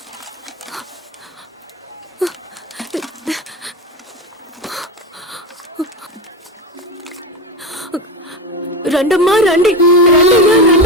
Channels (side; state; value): both; normal; correlation 0.19